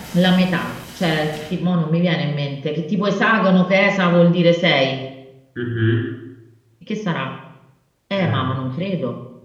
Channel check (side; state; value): both; identical; correlation 1.00